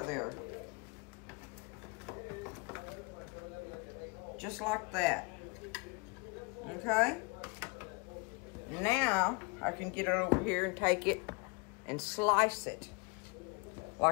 of there. Just like that. Okay? Now, I can get it over here and take it and slice it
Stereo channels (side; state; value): right; quieter; 30.6 dB